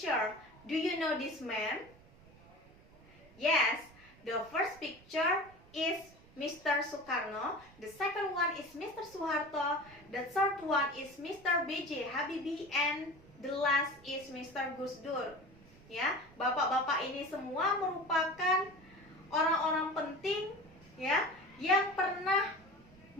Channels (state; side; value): noise; right; rumble, 24 dB below the sound